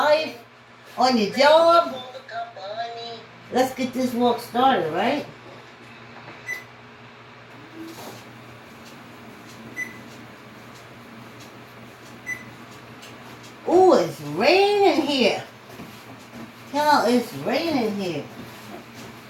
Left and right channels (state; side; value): identical; both; correlation 1.00